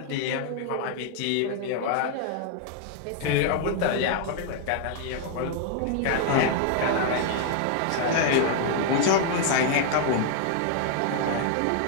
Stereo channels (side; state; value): both; different; correlation 0.00